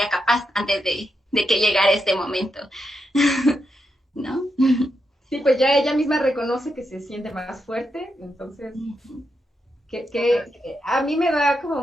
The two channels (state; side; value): normal; both; correlation 0.84